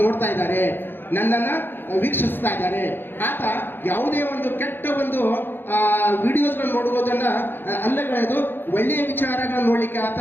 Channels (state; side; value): late; right; 0.099 ms